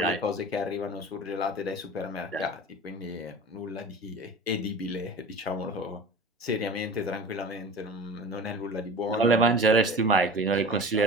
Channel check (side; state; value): both; normal; correlation 0.36